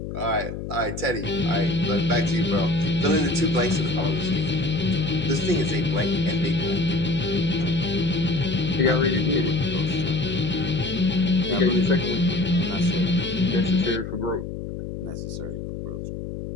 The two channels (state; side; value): noise; left; hum, 7 dB below the sound